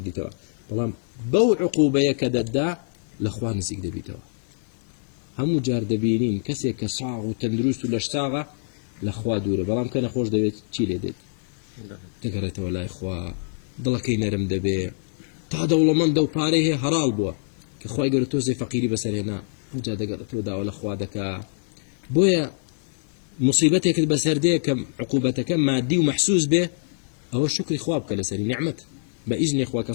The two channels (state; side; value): silent; right; digital silence